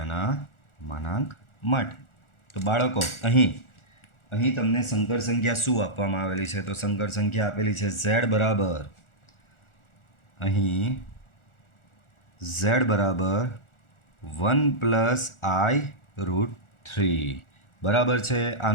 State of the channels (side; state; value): right; late; 1.4 ms